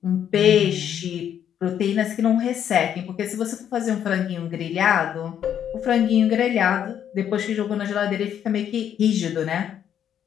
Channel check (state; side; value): quieter; right; 9.4 dB